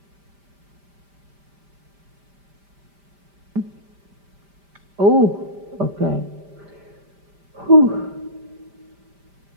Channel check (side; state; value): left; late; 5.1 ms